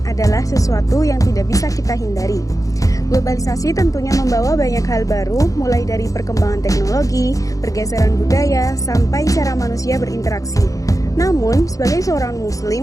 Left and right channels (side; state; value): right; late; 0.16 ms